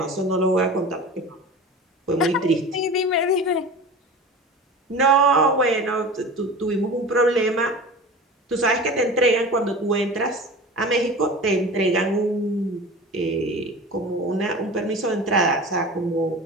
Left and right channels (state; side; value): normal; both; correlation 0.35